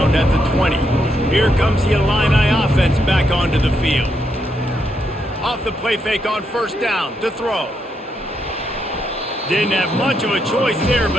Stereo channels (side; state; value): both; normal; correlation 0.79